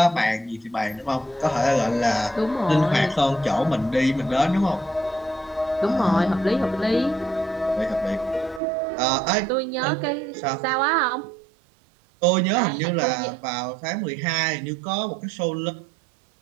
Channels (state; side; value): drops out; left; at 8.6 s